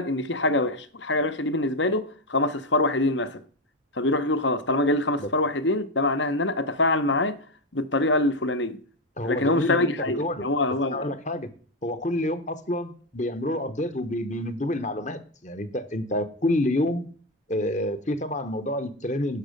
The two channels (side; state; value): both; normal; correlation 0.10